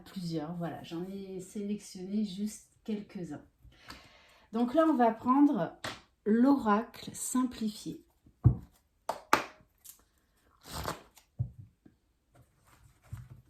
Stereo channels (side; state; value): both; identical; correlation 1.00